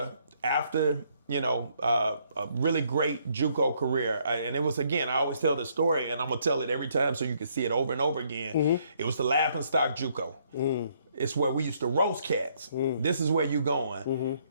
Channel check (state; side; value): inverted; both; correlation -0.69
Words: after, a really great JUCO career. And it was, again, I always tell the story, and I'm going to tell it every time so you can see it over and over again. It was the laughingstock JUCO. It's where we used to roast cats. This is where you going.